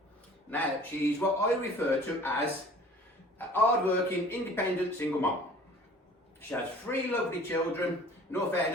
Now, she's what I refer to as a hard-working, independent single mom. She has 3 lovely children. In all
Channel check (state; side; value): normal; both; correlation 0.48